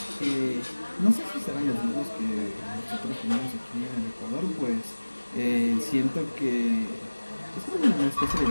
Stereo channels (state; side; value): inverted; both; correlation -1.00